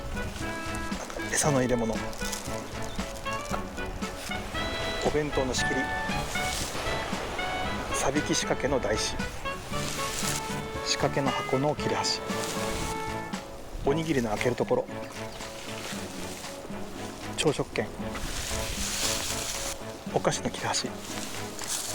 餌の入れ物、お弁当の仕切り、さびき仕掛けの台紙、仕掛けの箱の切れ端、おにぎりの開けるところ、朝食券、お菓子の切れ端、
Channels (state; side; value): identical; both; correlation 1.00